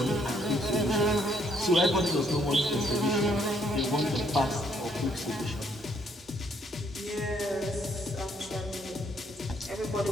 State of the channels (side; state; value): both; normal; correlation 0.69